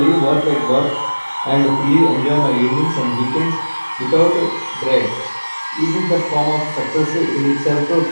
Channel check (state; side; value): inverted; both; correlation -1.00